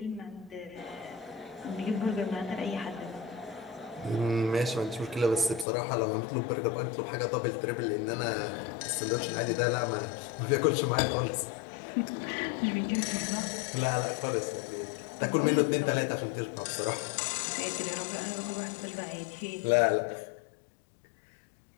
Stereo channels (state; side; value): drops out; right; at 5.7 s